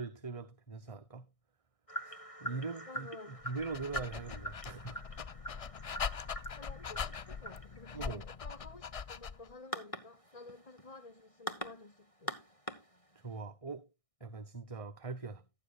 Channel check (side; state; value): right; late; 1.6 ms